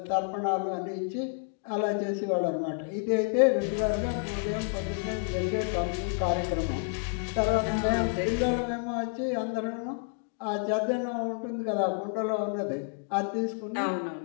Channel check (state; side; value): silent; right; 58 dB below the other